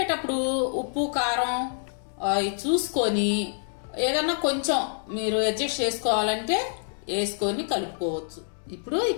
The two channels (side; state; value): right; silent; 60 dB below the other